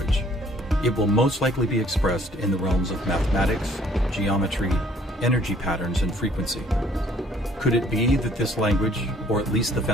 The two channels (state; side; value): normal; both; correlation 0.60